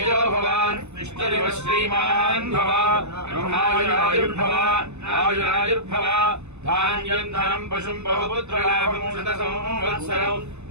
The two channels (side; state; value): left; late; 0.81 ms